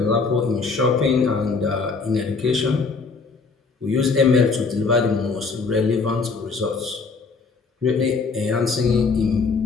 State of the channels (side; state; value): right; quieter; 4.5 dB